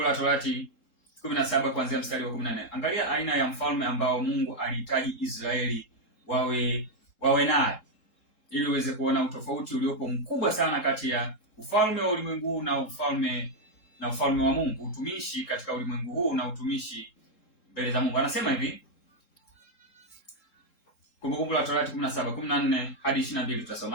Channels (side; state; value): right; late; 3.7 ms